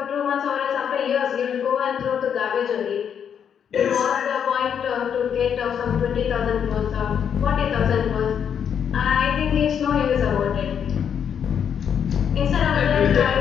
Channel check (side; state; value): right; quieter; 8.0 dB